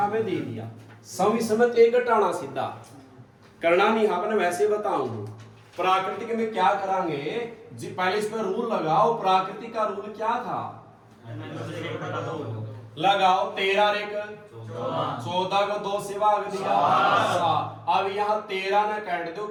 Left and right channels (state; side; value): identical; both; correlation 1.00